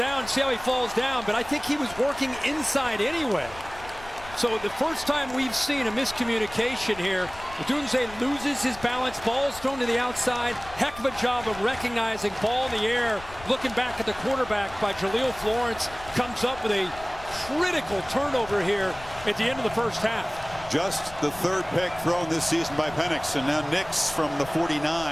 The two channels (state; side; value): noise; left; rumble, 18 dB below the sound